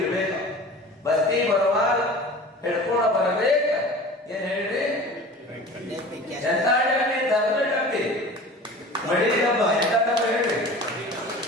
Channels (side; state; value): both; normal; correlation 0.39